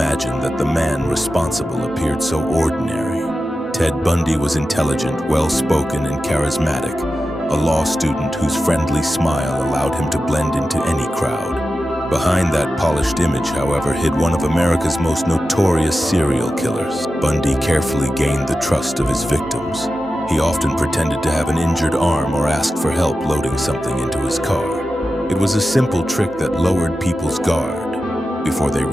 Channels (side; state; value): both; normal; correlation 0.92